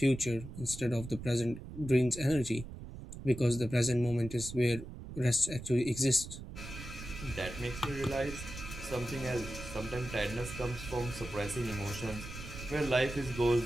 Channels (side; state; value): right; noise; rumble, 11 dB below the sound